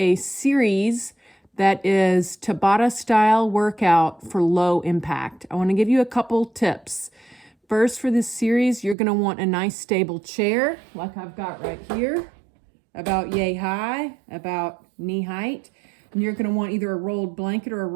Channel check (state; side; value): drops out; left; at 9.0 s